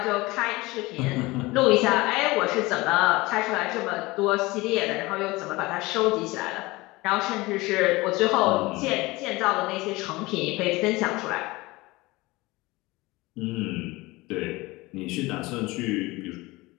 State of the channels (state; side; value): quieter; right; 21.6 dB